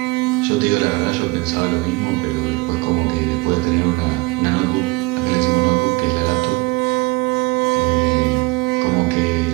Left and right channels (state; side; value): quieter; left; 25.0 dB